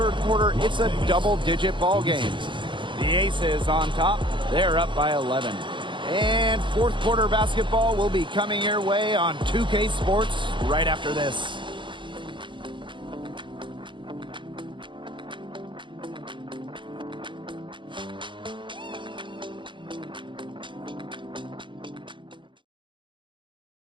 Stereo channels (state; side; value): late; left; 0.23 ms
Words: quarter, it's a double-digit ball game. The Aces on top. They're up by 11. And fourth quarter basketball will be coming your way on 2K Sports right after this.